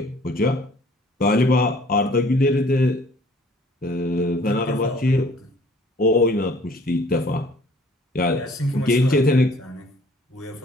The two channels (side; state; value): both; normal; correlation 0.55